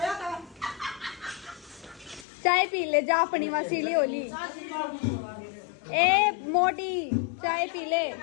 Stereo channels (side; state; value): right; drops out; at 2.2 s